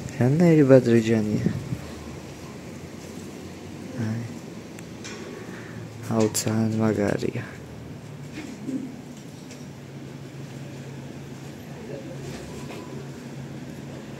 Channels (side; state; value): both; identical; correlation 1.00